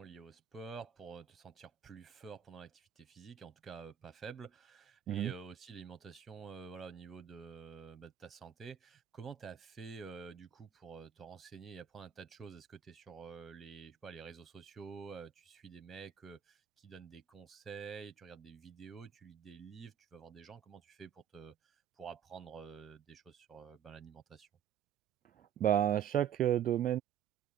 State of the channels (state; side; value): quieter; left; 9.7 dB